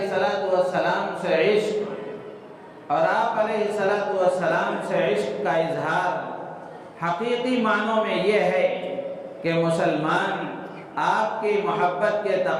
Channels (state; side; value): identical; both; correlation 1.00